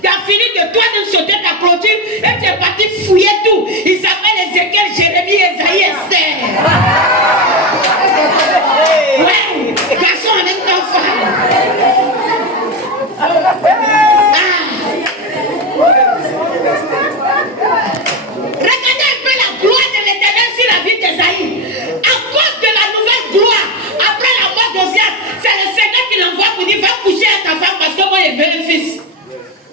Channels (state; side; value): normal; both; correlation 0.16